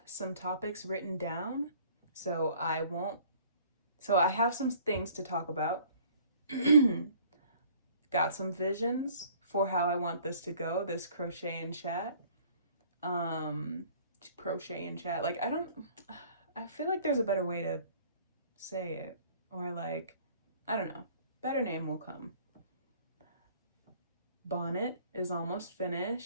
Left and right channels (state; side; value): inverted; both; correlation -0.53